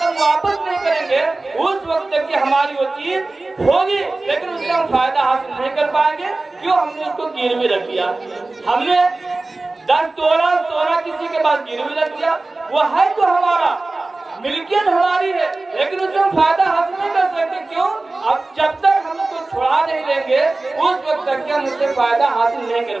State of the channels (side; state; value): left; quieter; 3.2 dB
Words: वापस नहीं करेंगे, उस वक्त तक की हमारी वो चीज होगी लेकिन उससे हम फायदा हासिल नहीं कर पाएंगे। क्यों? हमने उसको गिरवी रख दिया। हमने 10 तोला सोना किसी के पास गिरवी रख दिया, वो है तो हमारा, मिल्कियत हमारी है, लेकिन उससे हम फायदा हासिल नहीं कर सकते। क्यों? अब जब तक हम उसको छुड़ा नहीं लेंगे उस वक्त तक हम उससे फायदा हासिल नहीं कर